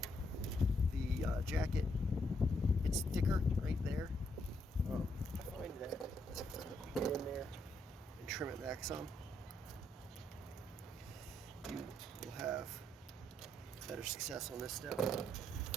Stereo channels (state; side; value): normal; both; correlation 0.75